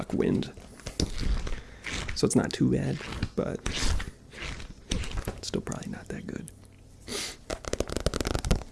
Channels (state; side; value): identical; both; correlation 1.00